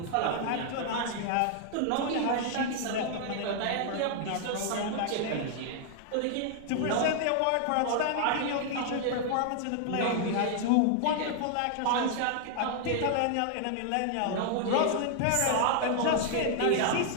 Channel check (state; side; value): different; both; correlation 0.00